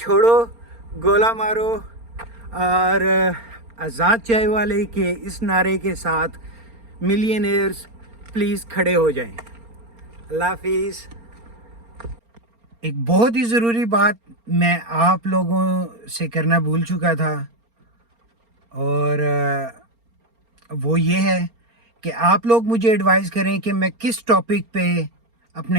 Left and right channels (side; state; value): left; late; 4.3 ms